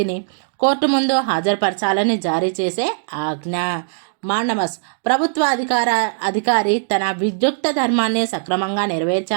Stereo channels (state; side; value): silent; left; digital silence